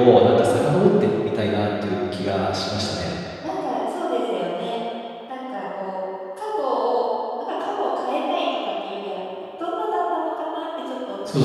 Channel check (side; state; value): both; identical; correlation 1.00